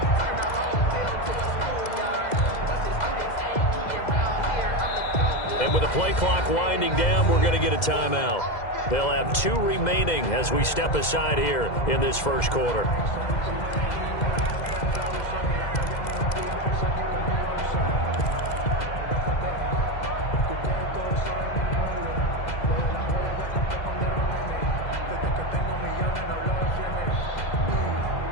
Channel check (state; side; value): late; right; 2.0 ms